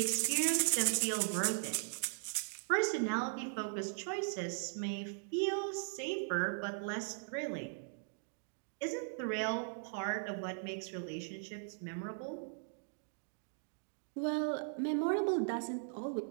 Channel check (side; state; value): left; silent; digital silence